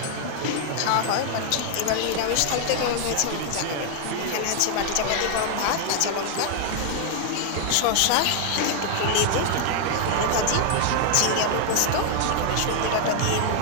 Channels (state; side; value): different; both; correlation 0.00